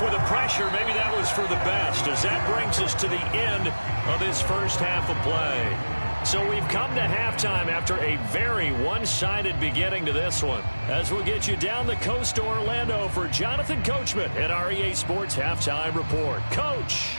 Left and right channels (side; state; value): both; inverted; correlation -1.00